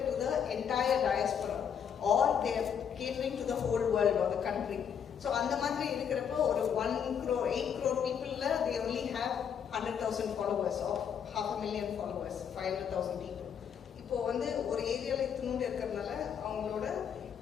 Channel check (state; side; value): quieter; right; 7.9 dB